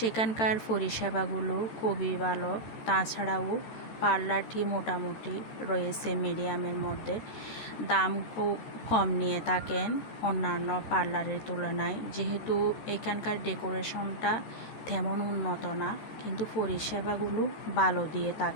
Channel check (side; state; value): right; late; 13 ms